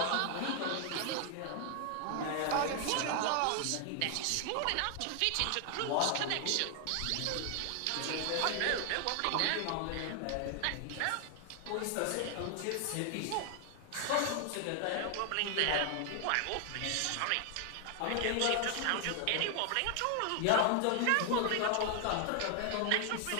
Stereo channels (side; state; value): both; different; correlation 0.00